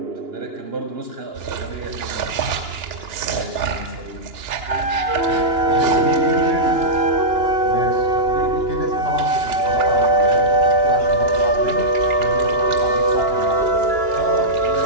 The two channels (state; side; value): late; left; 2.9 ms